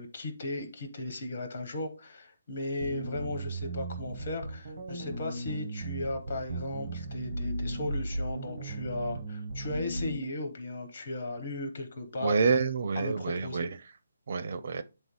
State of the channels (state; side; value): inverted; both; correlation -0.75